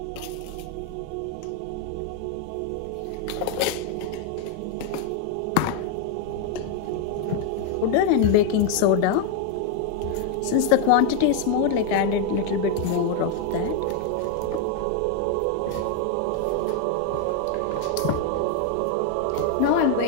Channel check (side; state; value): both; different; correlation 0.01